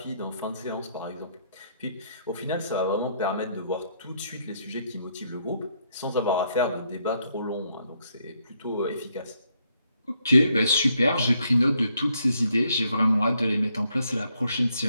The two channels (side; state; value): both; inverted; correlation -0.74